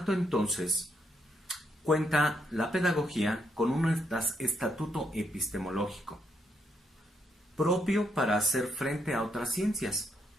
entonces, cuenta la pedagogía con un estatuto epistemológico propio para hacer frente a otras ciencias.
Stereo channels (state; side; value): normal; both; correlation 0.76